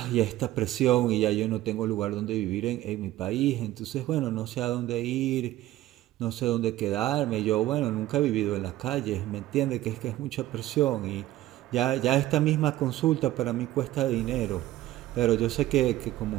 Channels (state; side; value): quieter; left; 15.0 dB